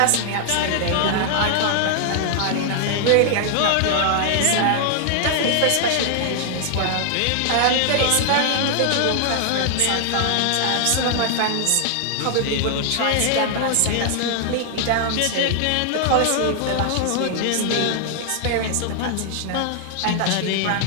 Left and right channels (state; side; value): different; both; correlation 0.00